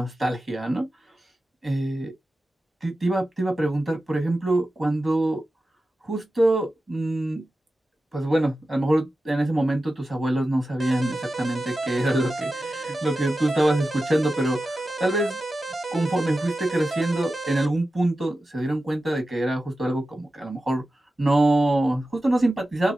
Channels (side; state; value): both; normal; correlation 0.93